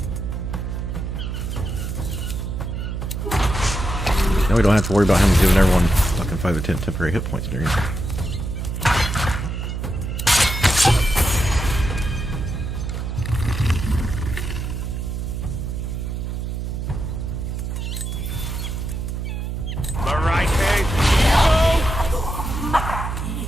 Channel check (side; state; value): right; noise; hum, 4 dB below the sound